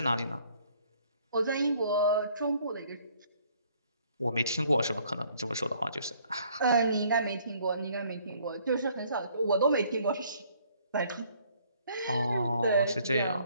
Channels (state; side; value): inverted; both; correlation -0.62